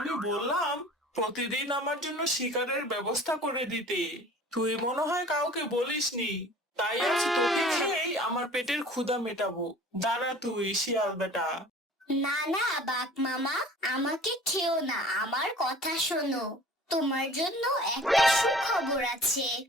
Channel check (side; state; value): both; normal; correlation 0.45